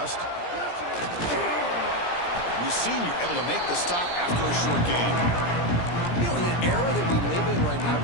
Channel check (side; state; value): right; late; 17 ms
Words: The senior able to make the stop after a short gain. You know, in an era that we live in right now,